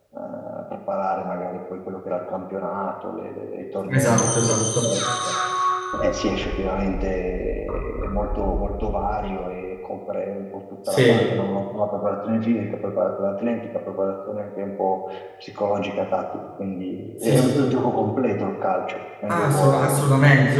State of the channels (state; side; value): identical; both; correlation 1.00